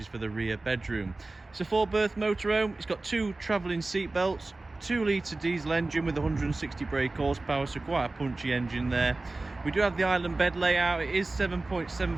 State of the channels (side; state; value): left; quieter; 3.2 dB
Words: is for the rear bedroom. It's a 4-berth motorhome. It's got 2 travelling seat belts, 2-litre diesel engine with 160 brake horsepower, so quite a punchy engine there. We do have the island bed layout. It is